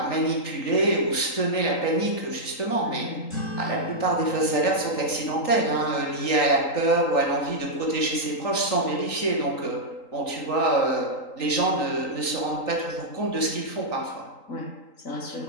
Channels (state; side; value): late; right; 3.8 ms